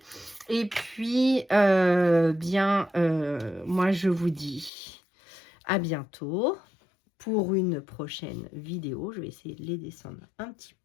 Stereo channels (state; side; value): drops out; right; at 4.7 s